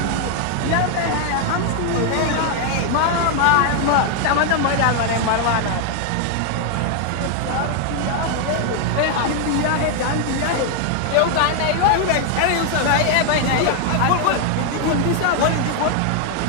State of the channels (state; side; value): different; both; correlation 0.00